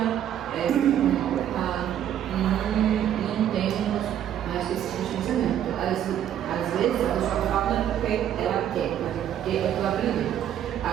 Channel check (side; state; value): left; quieter; 10.5 dB